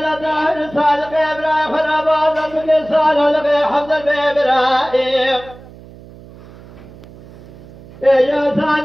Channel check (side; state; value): right; noise; hum, 20 dB below the sound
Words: دار صادق ابراهيم خرابات القصال لقي حمد ابراهيم يا